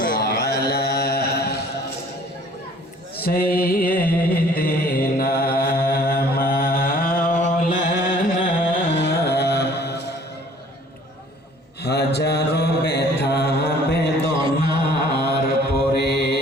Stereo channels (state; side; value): normal; both; correlation 0.54